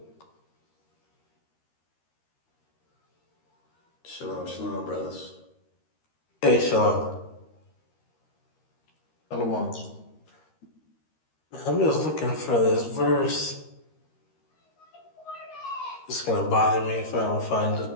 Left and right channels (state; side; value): late; right; 13 ms